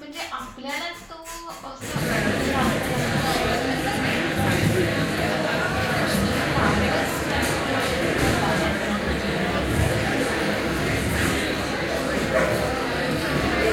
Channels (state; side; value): identical; both; correlation 1.00